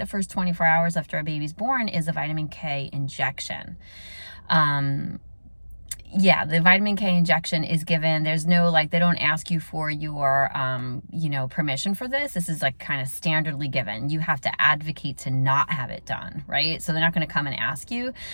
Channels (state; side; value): inverted; both; correlation -1.00